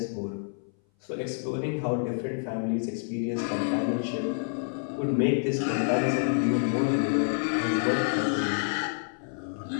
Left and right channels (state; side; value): silent; right; 58 dB below the other